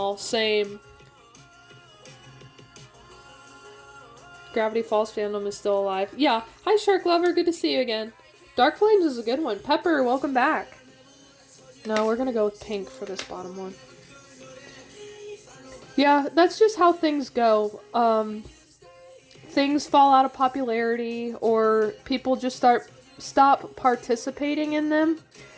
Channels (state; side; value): identical; both; correlation 1.00